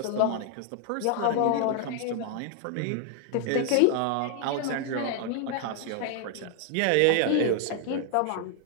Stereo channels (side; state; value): both; different; correlation 0.00